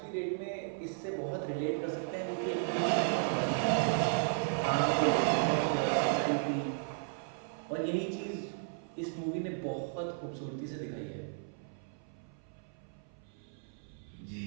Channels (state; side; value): silent; left; 55 dB below the other